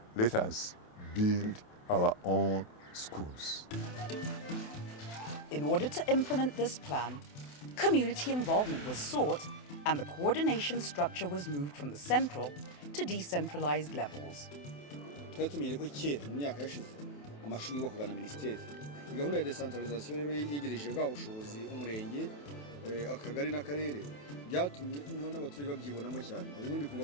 let us build our own schools. In order to implement this plan, community involvement was sought and the coordination structure was moved from the central to decentralized levels. amashuri yubakwaga na minisiteri gahunda ya decentralization rero yegereje bwa bushobozi umurenge akagari n'akarere byatumye n'abaturage babyibonamo cyane ubundi kumva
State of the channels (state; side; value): late; right; 28 ms